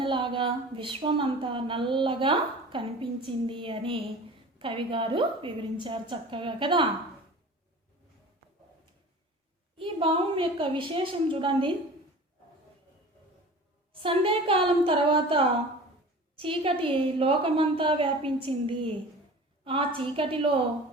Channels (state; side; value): normal; both; correlation 0.39